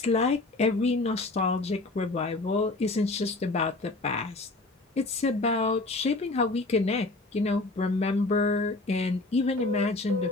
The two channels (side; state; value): right; quieter; 3.0 dB